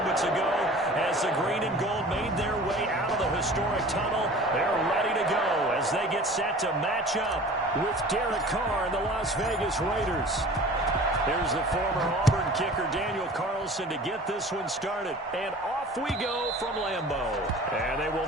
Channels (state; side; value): normal; both; correlation 0.43